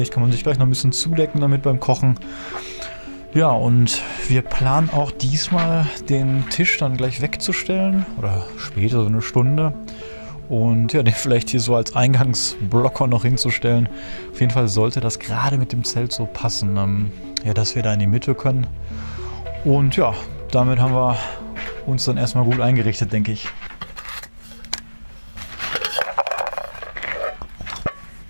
Kann man sich gleich noch ein bisschen zudecken damit beim Kochen. Ja, und wir planen auch diesmal den Tisch dann gleich wegzustellen. Oder später, so eine Stunde. Und ja, den vielleicht hier so als Eingangsblocker noch hinzustellen. Auf jeden Fall sollte das gerade mit dem Zelt so passen, ja, dass wir da in die Mitte können. Und ja, damit haben wir uns dann erstmal gut eingerichtet, denke ich.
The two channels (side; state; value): both; inverted; correlation -1.00